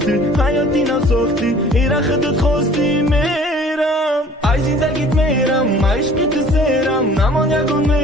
حیاتی نساختی ایره خودت خواستی میرم ای زندگیت میرم عشقی تو سیرم نمان یکون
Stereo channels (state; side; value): normal; both; correlation 0.50